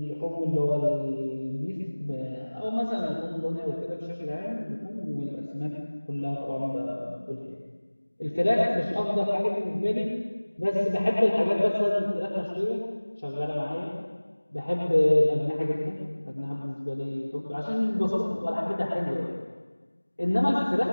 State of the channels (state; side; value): inverted; both; correlation -1.00